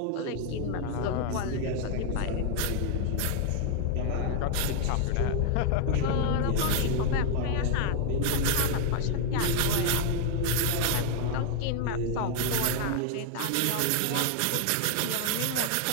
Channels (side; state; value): both; different; correlation 0.00